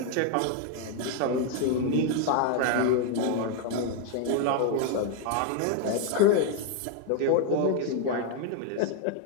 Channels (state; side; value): different; both; correlation 0.01